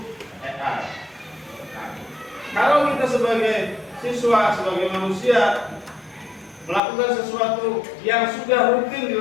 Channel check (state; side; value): drops out; right; at 6.8 s